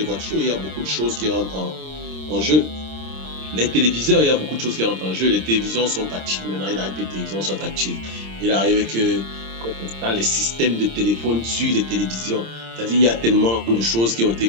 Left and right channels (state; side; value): late; left; 26 ms